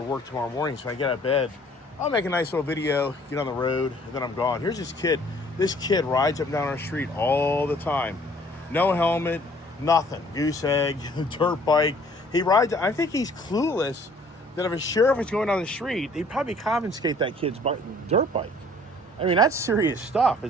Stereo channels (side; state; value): both; normal; correlation 0.56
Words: work tomorrow morning. So I get out of bed. I'll make a nice little video, get on the road, and then I'm gone. Here's this kid. This kid rides up and down our street all the time. No helmet, nothing. Goose egg, dirt bike. He rides. I think he's clueless that if a sheriff was going down the street, he'd probably confiscate that kid's dirt bike. I mean, that's serious stuff